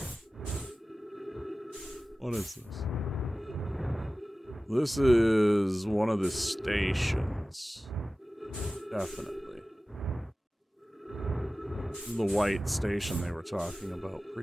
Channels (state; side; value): normal; both; correlation 0.96